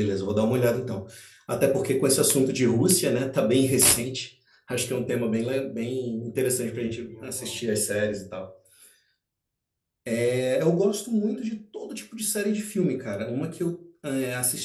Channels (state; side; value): identical; both; correlation 1.00